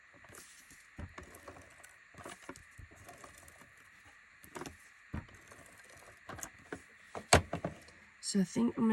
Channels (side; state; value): both; identical; correlation 1.00